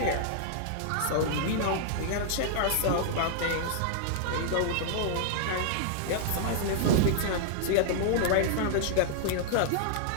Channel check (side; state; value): both; different; correlation -0.01